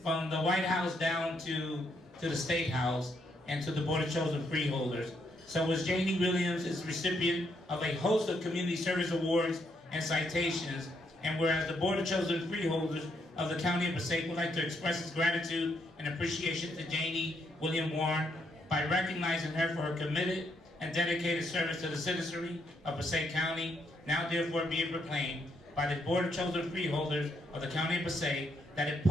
the White House down to the State House and to the Board of Chosen Freeholders. So as J.D. Williams is recipient of a host of community service awards and citations, and whereas the Board of Chosen Freeholders of the County of Passaic would like to express its gratitude and appreciation to J.D. William Warren by recognizing her for her committed and dedicated service to the citizenry of Passaic County, now therefore be it proclaimed by the Board of Chosen Freeholders of the County of Passaic that it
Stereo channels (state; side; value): normal; both; correlation 0.75